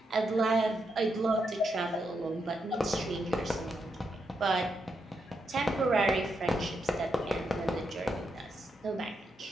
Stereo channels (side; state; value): both; normal; correlation 0.82